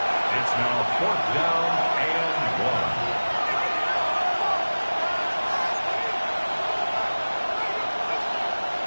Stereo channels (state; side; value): inverted; both; correlation -1.00